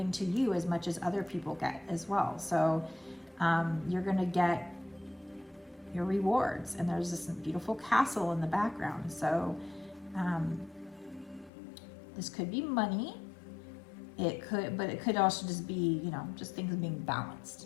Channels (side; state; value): right; drops out; at 11.5 s